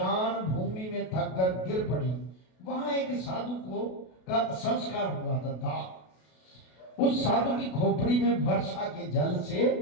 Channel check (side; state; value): right; late; 33 ms